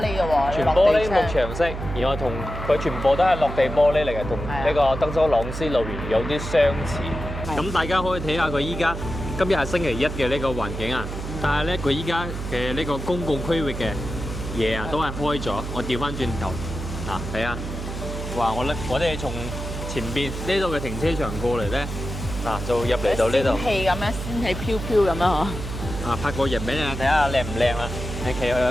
嘅喎，全玻璃幕牆式，然後同佢全部都係落地玻璃嚟嘅，同呢個德州朗斯路園有啲相似。咁大家可以睇下佢依家今日係星期一嘅呢個環境啊，但係咧佢依家嘅呢個公共區域嘅嘢啊都係開咗。我調翻轉頭嗱，睇下，哇！我哋從前邊呢度嘅停車場過嚟咧，嗱就入嚟到呢度。仙氣咁樣，仙氣飄飄咁樣嗬。啊，拍個人俾你睇下靚唔靚啊！你企去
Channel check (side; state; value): right; noise; hum, 7 dB below the sound